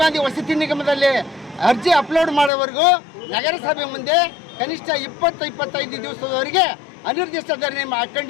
ಗಾಂಧಿ ವಸತಿ ನಿಗಮದಲ್ಲಿ ಅರ್ಜಿ ಅಪ್ಲೋಡ್ ಮಾಡೋವರೆಗೂ ನಗರಸಭೆ ಮುಂದೆ ಕನಿಷ್ಠ 20-25 ದಿವಸದವರೆಗೆ ಅನಿರ್ದಿಷ್ಟ ಧರಣಿ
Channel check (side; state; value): right; drops out; at 2.5 s